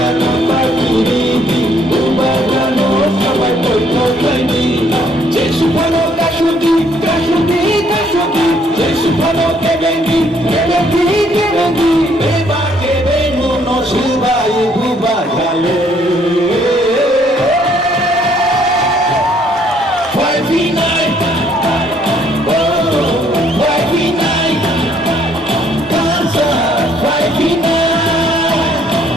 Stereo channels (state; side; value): normal; both; correlation 0.66